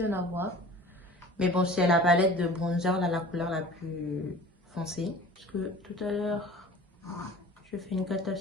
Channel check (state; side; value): normal; both; correlation 0.43